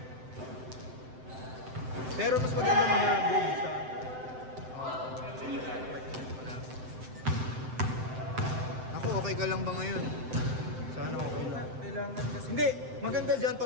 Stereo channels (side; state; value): left; late; 7.8 ms